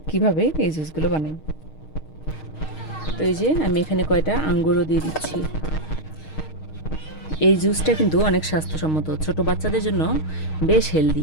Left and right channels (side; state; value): right; late; 6.4 ms